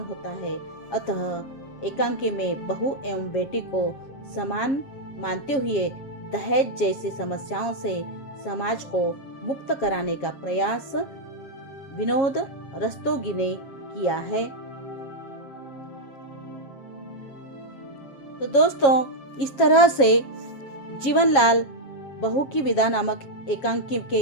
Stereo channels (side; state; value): right; late; 7.5 ms